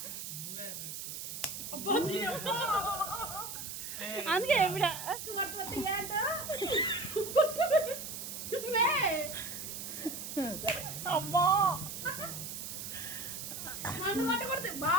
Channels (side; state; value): right; noise; hiss, 7 dB below the sound